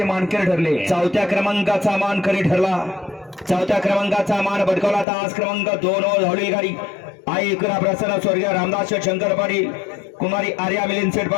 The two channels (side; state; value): right; drops out; at 5.1 s